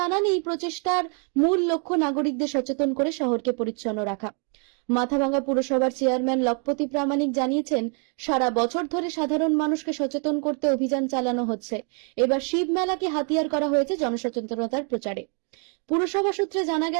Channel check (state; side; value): quieter; left; 39.7 dB